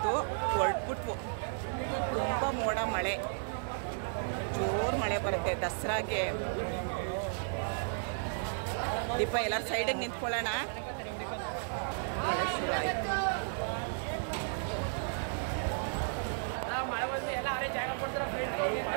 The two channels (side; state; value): left; silent; 55 dB below the other